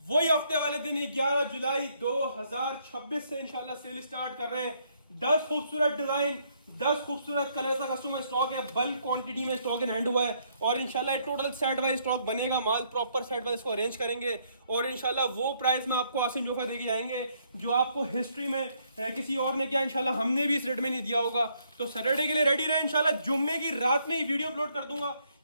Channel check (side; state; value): both; inverted; correlation -0.70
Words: वही हफ्ते वाले दिन 11 जुलाई 2026 से इंशाल्लाह सेल स्टार्ट कर रहे हैं। 10 खूबसूरत डिजाइन, 10 खूबसूरत कलर का कस्टमर स्टॉक है, बल्क क्वांटिटी में स्टॉक इन हैंड हुआ है और इंशाल्लाह टोटल सेट वाइज स्टॉक बनेगा, माल प्रॉपर सेट वाइज इसको अरेंज करेंगे और इंशाल्लाह वो प्राइस में आपको आसिम जोफा देके जाएंगे जो आपको हिस्ट्री में किसी और ने किया, इंशाल्लाह हमने भी इस रेट में नहीं दिया होगा। तो सैटरडे के लिए रेडी रहे, इंशाल्लाह जुम्मे की रात में ही वीडियो अपलोड कर दूंगा,